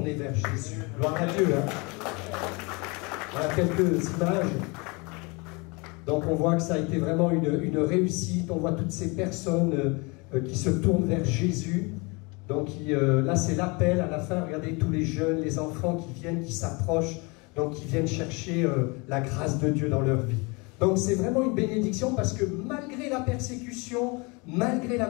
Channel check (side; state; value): right; quieter; 28.5 dB